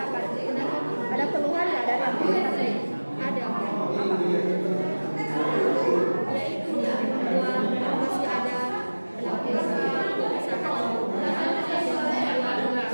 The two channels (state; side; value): inverted; both; correlation -1.00